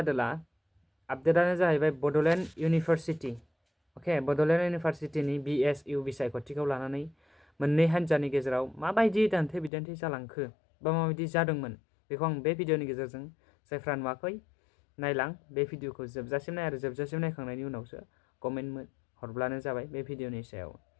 आपडेटानो जाहैबाय बड'लेण्ड इउनिभारसिटि अके बड'लेण्ड इउनिभारसिटिनि BSU बिसायख'थिखौ लानानै मोननै हान्जानि गेजेराव माबायदि दान्थे बिदान्थे जालांखो बा माबायदि जादोंमोन बेखौ आं बे भिडिअनि गेजेरजों जायफ्रा नुवाखै नायलां बे भिडिअखौ जोबजासिम नाय आरो जोबजासिम नायखांनायनि उनावसो कमेन्ट हरब्लानो जाबाय बे भिडिअनि सायाव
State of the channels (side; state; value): right; drops out; at 9.7 s